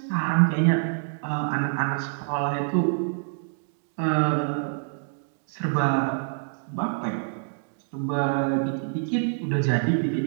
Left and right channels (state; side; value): silent; left; digital silence